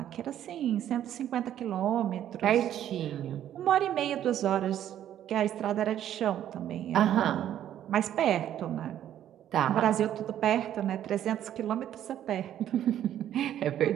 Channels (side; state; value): left; quieter; 11.1 dB